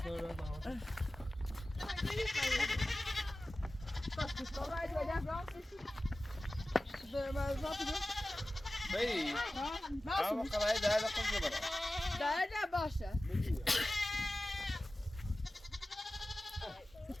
بي انا خلاص هذا قصدي برا ده باشه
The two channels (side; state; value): both; normal; correlation 0.96